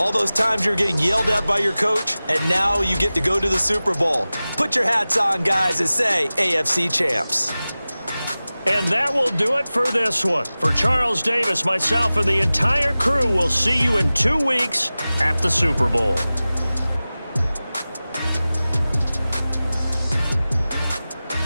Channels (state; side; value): inverted; both; correlation -0.97